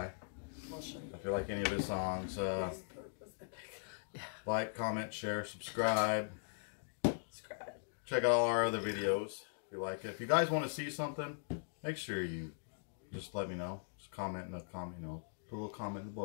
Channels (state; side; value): silent; right; digital silence